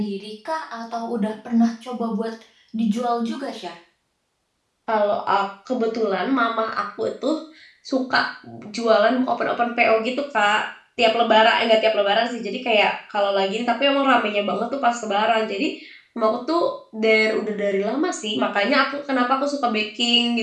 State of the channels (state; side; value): identical; both; correlation 1.00